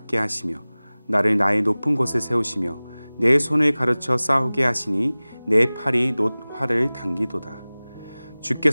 하시며 나를 나의 높은 곳에 세우시며 내 손을 가르쳐 싸우게 하시니 내 팔이 놋 활을 당기도다.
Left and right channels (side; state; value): both; inverted; correlation -0.99